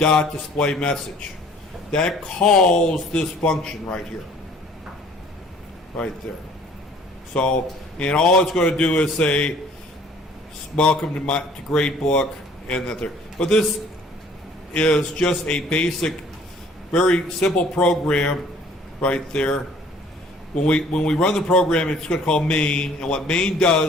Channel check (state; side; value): normal; both; correlation 0.55